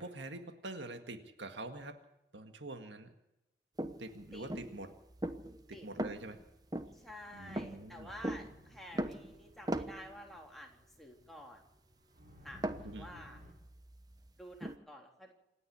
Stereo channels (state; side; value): normal; both; correlation 0.64